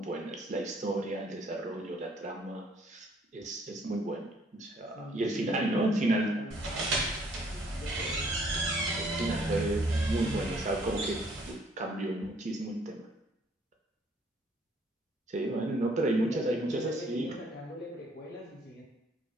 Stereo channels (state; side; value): normal; both; correlation 0.63